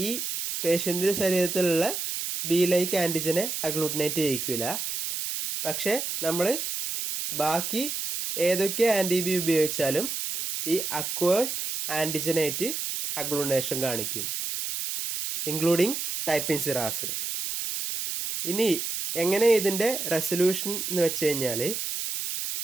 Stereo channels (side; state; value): right; noise; hiss, 4 dB below the sound